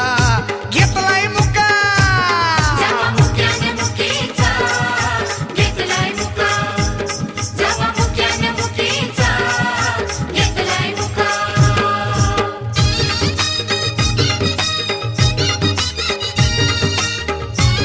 घेतलाय मुका जवा मुक्यानं मुकीचा घेतलाय मुका जवा मुक्यानं मुकीचा घेतलाय मुका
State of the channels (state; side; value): identical; both; correlation 1.00